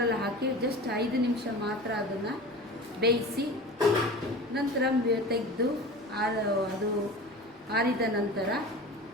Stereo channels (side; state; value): both; normal; correlation 0.35